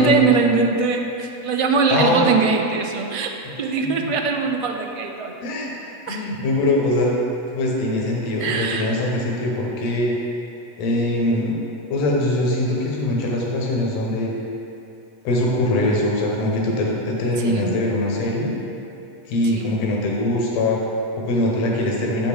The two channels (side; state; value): right; late; 8.1 ms